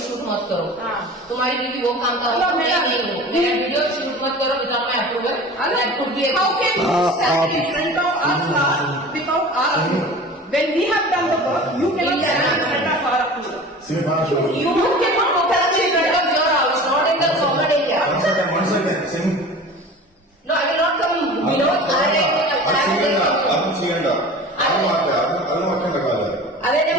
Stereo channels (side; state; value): both; normal; correlation 0.38